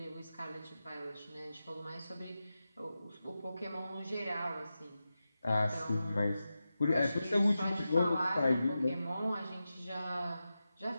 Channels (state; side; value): inverted; both; correlation -0.92